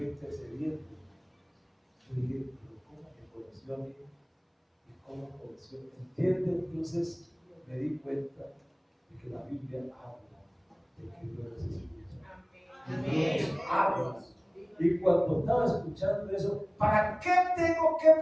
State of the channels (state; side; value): identical; both; correlation 1.00